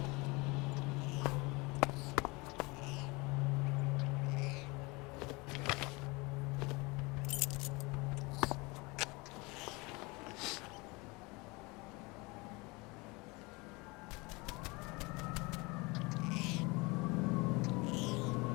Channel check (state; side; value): quieter; right; 25.8 dB